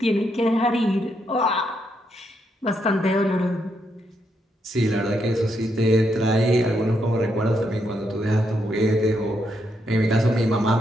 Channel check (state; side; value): normal; both; correlation 0.79